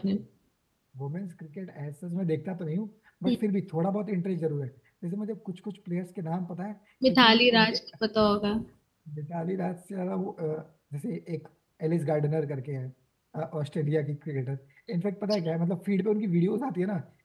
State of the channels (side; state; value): both; identical; correlation 1.00